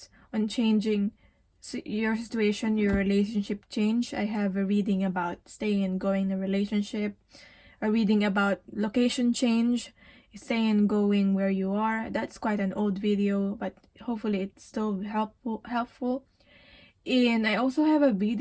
on changing your situation, your relationship change, I have a reading about staying and going in a relationship, a reading about location change, staying and going where you are. That's quite an old video, but hopefully it's still helpful. And I also have a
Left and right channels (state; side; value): identical; both; correlation 1.00